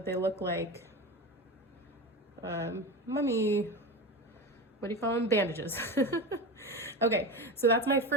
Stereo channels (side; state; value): both; normal; correlation 0.24